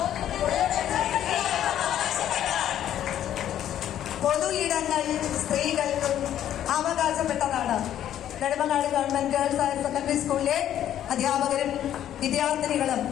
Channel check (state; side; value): quieter; right; 11.2 dB